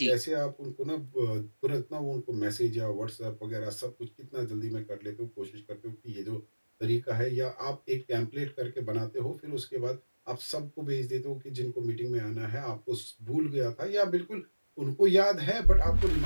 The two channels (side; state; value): both; inverted; correlation -1.00